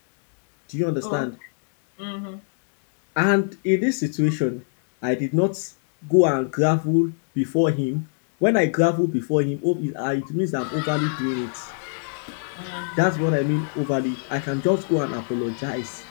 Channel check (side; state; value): right; silent; 63 dB below the other